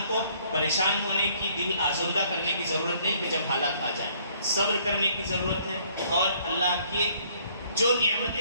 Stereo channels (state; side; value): inverted; both; correlation -0.62